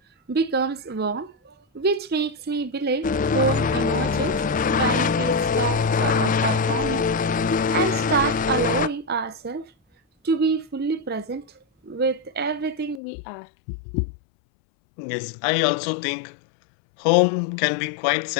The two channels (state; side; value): drops out; right; at 13.0 s